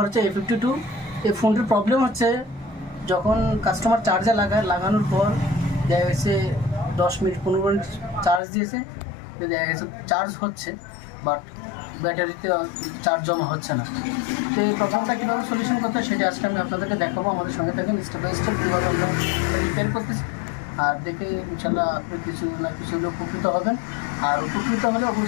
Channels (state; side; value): drops out; right; at 8.4 s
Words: হচ্ছে A52। এই ফোনটির প্রবলেম হচ্ছে যখন কাস্টমার চার্জে লাগানোর পর দেখা গেছে 10 মিনিট 15 মিনিট চার্জ দিয়েছে, দেখা গেছে চার্জ হচ্ছে বাট ব্যাটারিতে চার্জ জমা হচ্ছে না। তো এই প্রবলেমটা কীভাবে সলিউশন করতে হয় সেটা আজকে আমি আপনাদেরকে দেখাবো। আমাদের সঙ্গে থাকেন, স্টেপ বাই স্টেপ কীভাবে আমরা রিপেয়ার করতেছি, আর দেখে ইনশাল্লাহ আপনি কিছু না কিছু হলে উপকৃত হবেন। আর উপকৃত হলে